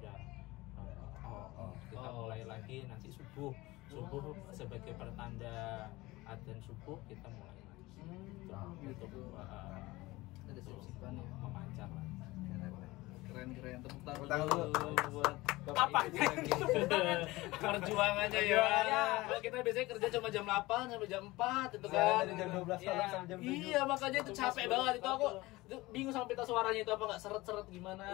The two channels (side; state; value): right; quieter; 20.2 dB